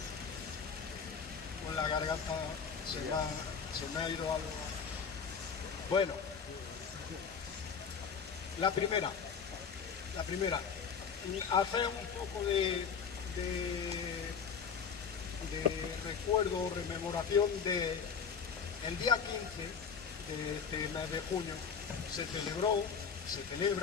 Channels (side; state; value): right; quieter; 6.4 dB